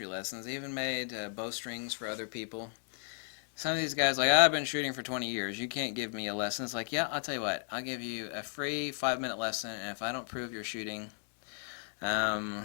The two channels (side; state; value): right; silent; 55 dB below the other